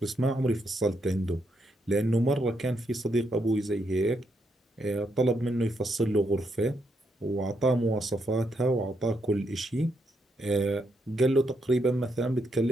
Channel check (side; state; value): both; normal; correlation 0.78